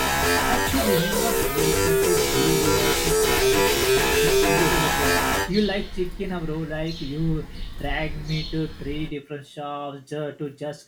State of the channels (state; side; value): identical; both; correlation 1.00